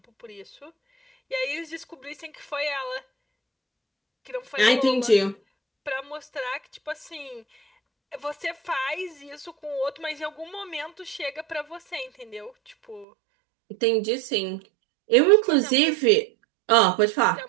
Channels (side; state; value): left; drops out; at 13.1 s